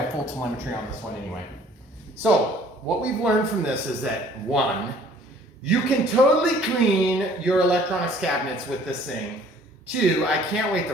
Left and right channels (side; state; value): both; normal; correlation 0.55